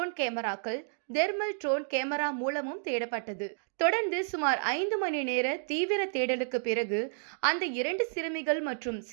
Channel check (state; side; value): silent; left; digital silence